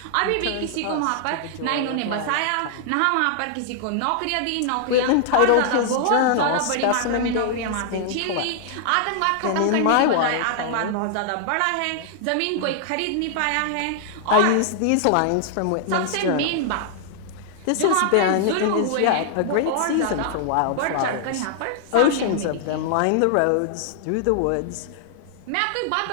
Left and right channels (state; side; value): different; both; correlation -0.01